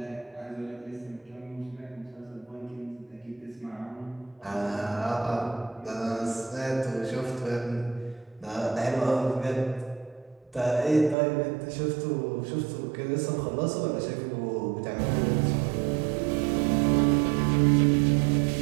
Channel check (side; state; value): left; drops out; at 11.2 s